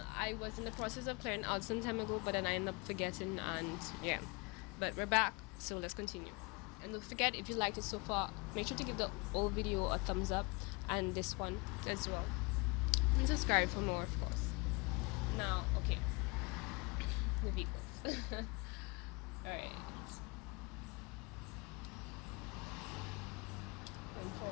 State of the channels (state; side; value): quieter; right; 28.2 dB